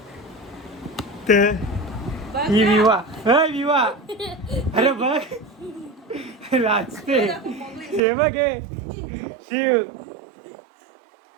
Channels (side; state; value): left; drops out; at 8.0 s